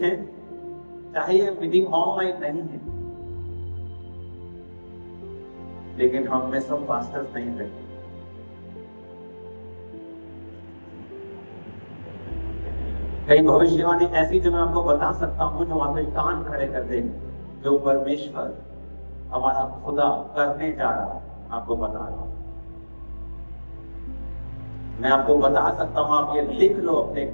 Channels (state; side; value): inverted; both; correlation -1.00